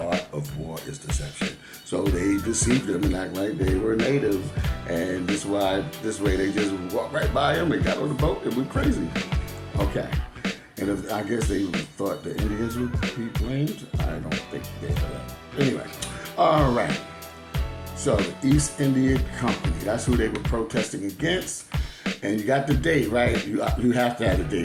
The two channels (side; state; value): both; identical; correlation 1.00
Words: of war is deception. So they deceived them and act like they were native, and this way they just walked right by them and got on the boat and went crazy. Okay. And I guess they thought the Indians would be blamed. I don't think they are. Anyway, all right. So the East India Company, that's who they were protesting against. And you got the date, right? You have to have the